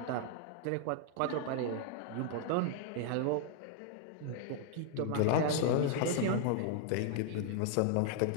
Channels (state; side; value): different; both; correlation 0.00